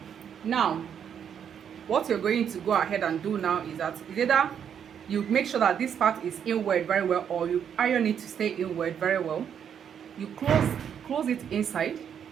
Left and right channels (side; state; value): left; quieter; 8.3 dB